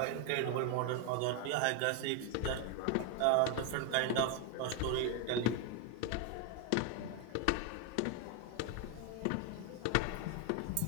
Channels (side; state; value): both; different; correlation 0.01